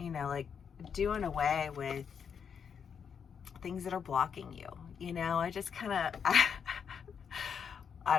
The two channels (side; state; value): right; quieter; 7.0 dB